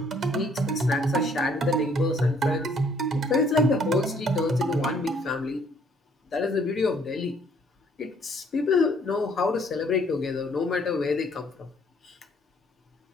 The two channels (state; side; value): normal; both; correlation 0.63